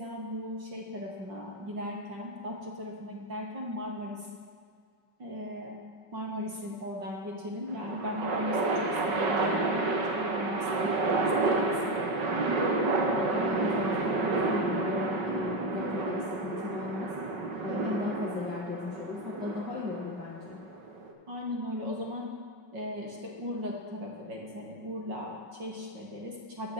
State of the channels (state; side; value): late; left; 5.3 ms